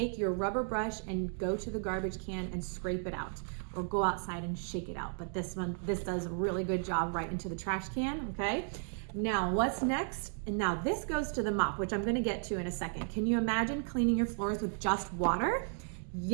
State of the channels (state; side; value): silent; left; 55 dB below the other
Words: your rubber brush and go to the garbage can and scrape it out, or go outside and shake it out. But this does a really good job right into the trash can, okay? Now, what's next? And now this goes to the mop, which I'm gonna get to in a second. Can you imagine cleaning your floors with just water?